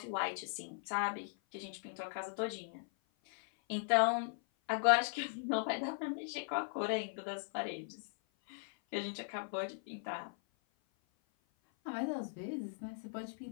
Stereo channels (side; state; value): right; silent; 52 dB below the other